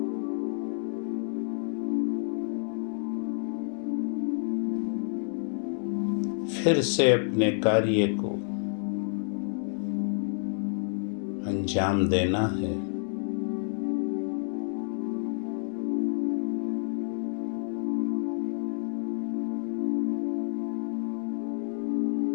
फिर से अपने कार्य को अंजाम देना है।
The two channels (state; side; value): silent; right; digital silence